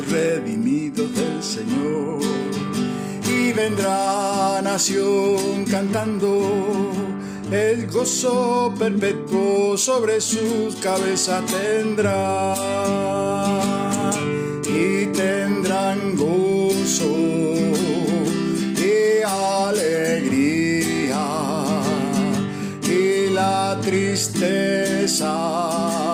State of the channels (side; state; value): both; identical; correlation 1.00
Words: redimidos del Señor, y vendrá nación cantando. El gozo perpetuo sobre sus cabezas tendrá, y tendrán gozo y alegría, y la tristeza